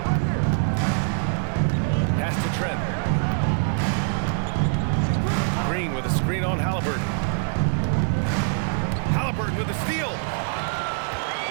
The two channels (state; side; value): silent; left; 57 dB below the other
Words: Pass to Trent. Green with a screen on Halliburton. Halliburton with a steal.